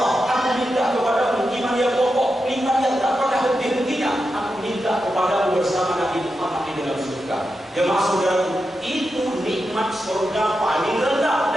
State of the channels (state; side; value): normal; both; correlation 0.88